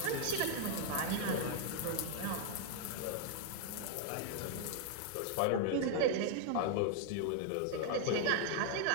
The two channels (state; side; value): different; both; correlation 0.00